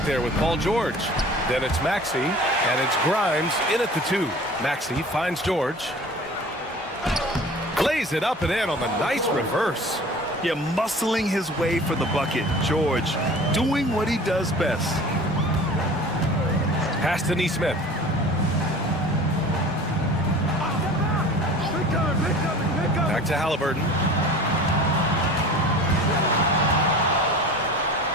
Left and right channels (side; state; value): both; normal; correlation 0.42